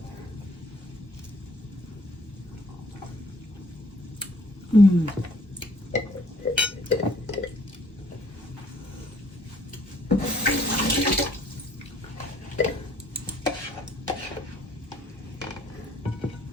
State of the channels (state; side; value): normal; both; correlation 0.60